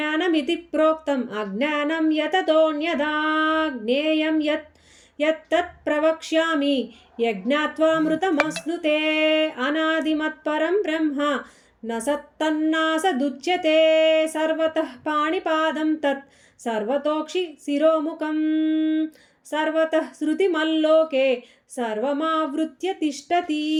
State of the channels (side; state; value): both; identical; correlation 1.00